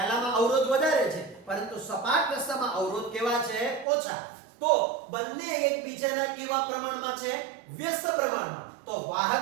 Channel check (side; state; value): left; drops out; at 3.9 s